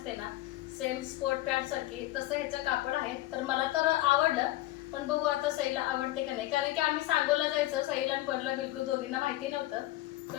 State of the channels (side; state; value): right; quieter; 16.5 dB